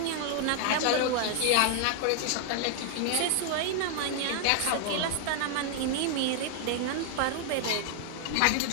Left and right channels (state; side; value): different; both; correlation 0.00